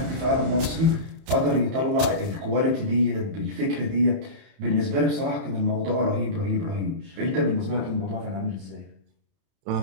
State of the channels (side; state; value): left; late; 31 ms